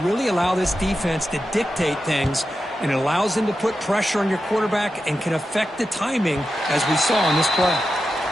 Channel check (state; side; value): normal; both; correlation 0.90